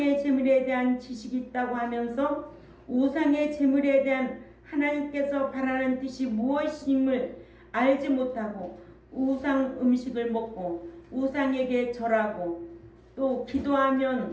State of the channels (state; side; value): identical; both; correlation 1.00